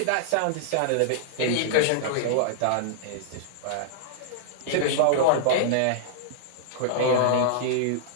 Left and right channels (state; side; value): different; both; correlation -0.02